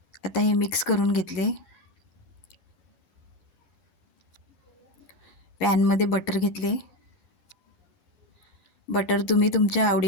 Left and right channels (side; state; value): right; late; 10 ms